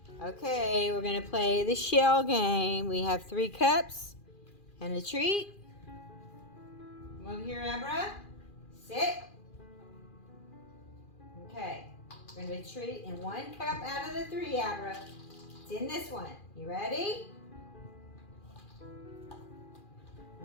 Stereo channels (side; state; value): right; late; 2.4 ms